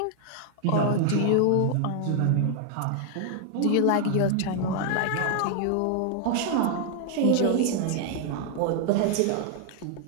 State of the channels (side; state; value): both; different; correlation 0.00